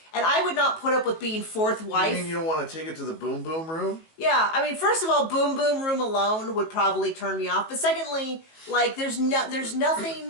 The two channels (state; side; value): late; right; 19 ms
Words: and I would not put up with being fourth wife. You mean you don't want to take it to the boom boom room? Yeah, I mean, first of all, boom boom room alone would probably turn me off, but secondly, like, there's